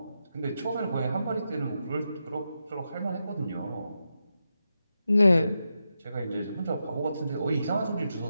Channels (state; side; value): inverted; both; correlation -0.87